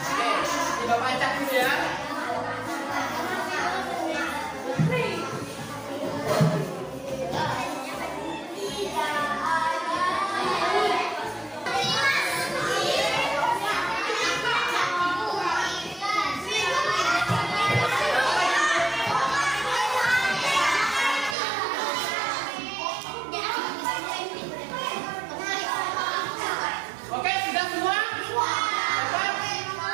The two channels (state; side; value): drops out; left; at 21.4 s